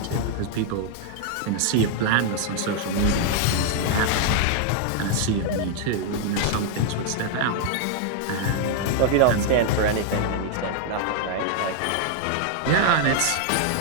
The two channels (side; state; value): both; different; correlation 0.00